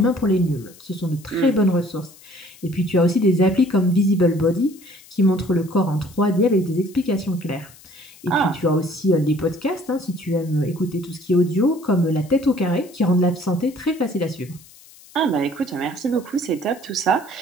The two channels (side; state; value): left; noise; hiss, 23 dB below the sound